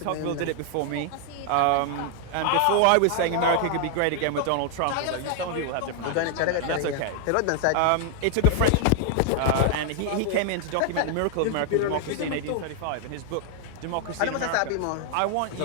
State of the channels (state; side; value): different; both; correlation 0.00